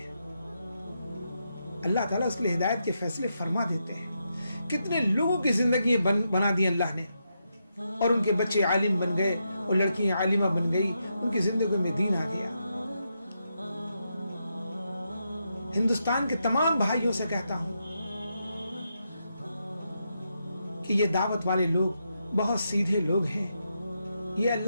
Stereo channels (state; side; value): inverted; both; correlation -0.83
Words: اللہ تعالیٰ اس کے لیے ہدایت کے فیصلے فرما دیتے ہیں. کتنے لوگوں کی زندگی بنا دی اللہ نے، اور ان کے بچے عالم بن گئے اور لڑکیاں عالمہ بن گئی، ان کی زندگی میں دین آ گیا. ہندوستان کے تمام بھائیوں سے کہتا ہوں کہ یہ دعوت والے لوگ بہت سیدھے لوگ ہیں، یہ